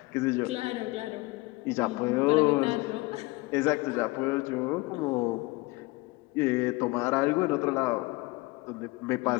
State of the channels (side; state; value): right; quieter; 23.1 dB